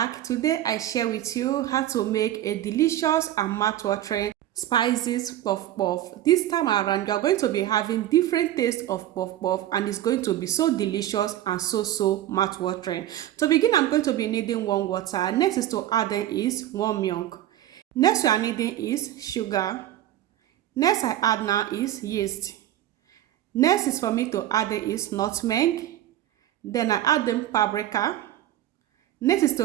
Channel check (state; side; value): quieter; left; 13.0 dB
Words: Today I share with you how to make a delicious and mouth-watering spices puff puff. This time around you are going to be having different tastes of puff puff and it's going to be so delicious and so mouth-watering. To begin, I'm going to be needing warm water. Next is to add in is warm milk. Next we are needing is sugar. Next I add now is yeast. Next is for me to add in is nutmeg. Then I add them paprika. Next is